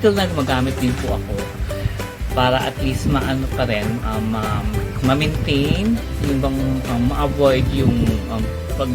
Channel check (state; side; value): identical; both; correlation 1.00